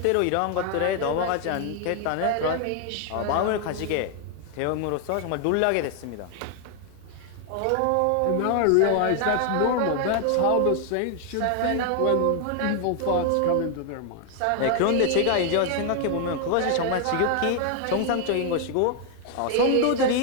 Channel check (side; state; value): both; different; correlation 0.00